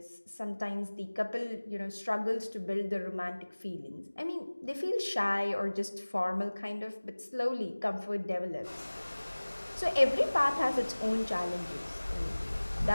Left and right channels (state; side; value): inverted; both; correlation -1.00